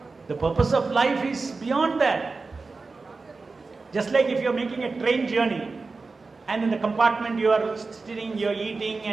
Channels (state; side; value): quieter; left; 4.0 dB